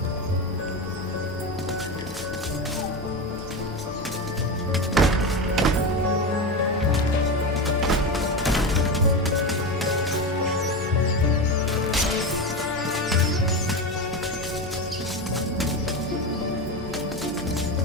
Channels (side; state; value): both; normal; correlation 0.19